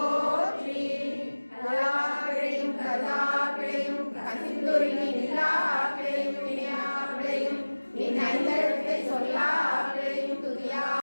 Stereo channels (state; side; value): inverted; both; correlation -1.00